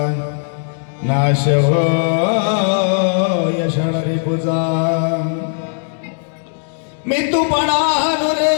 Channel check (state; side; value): silent; right; digital silence